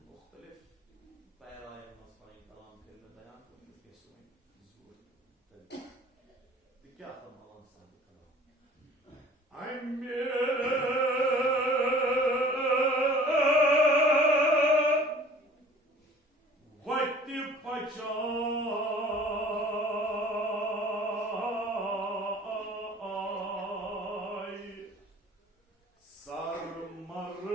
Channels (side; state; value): both; normal; correlation 0.48